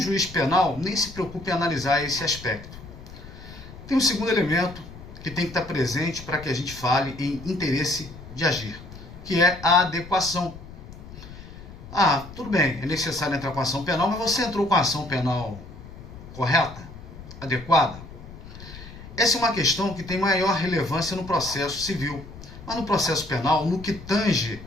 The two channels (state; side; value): noise; left; rumble, 15 dB below the sound